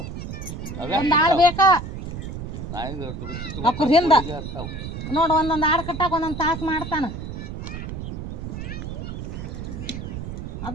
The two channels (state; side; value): noise; right; rumble, 7 dB below the sound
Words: ಒಂದು ಆಳು ಬೇಕಾ ಅವ್ರ ಹಿಂದ ನೋಡು ಒಂದೊಂದು ಆಡು ಕಟ್ಟಾಕ ಒಂದೊಂದು ತಾಸು ಮಾಡ್ತಾನ